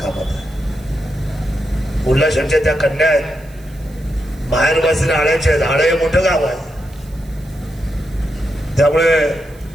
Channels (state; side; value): noise; right; hiss, 27 dB below the sound